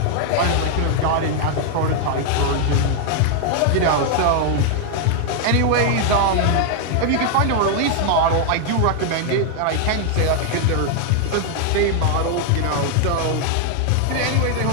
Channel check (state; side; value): different; both; correlation 0.00